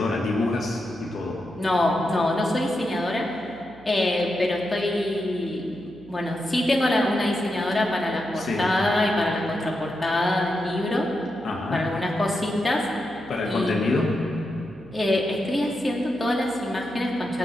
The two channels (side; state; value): right; noise; hum, 22 dB below the sound